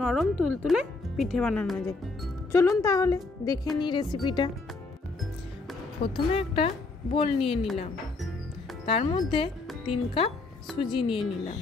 तुलतुले पिठे बानानो जाय। चलुन ताहले देखे नी रेसिपिटा। प्रथमे एकटा बोल निये निलाम, तार मध्य 3 कप सुजी निये निलाम,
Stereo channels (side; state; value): right; quieter; 3.6 dB